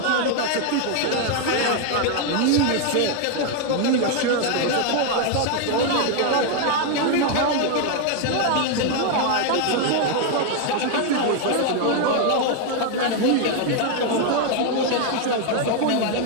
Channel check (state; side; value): different; both; correlation 0.01